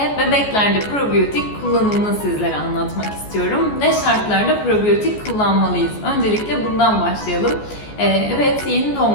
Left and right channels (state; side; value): late; right; 14 ms